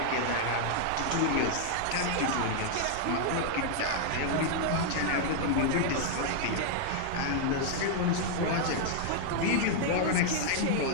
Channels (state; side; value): different; both; correlation -0.01